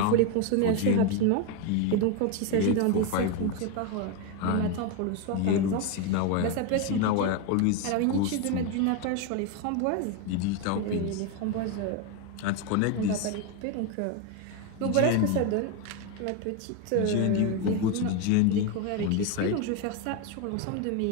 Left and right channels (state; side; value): different; both; correlation 0.02